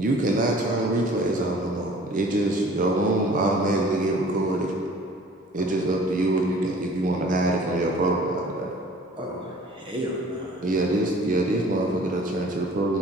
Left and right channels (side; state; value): both; normal; correlation 0.50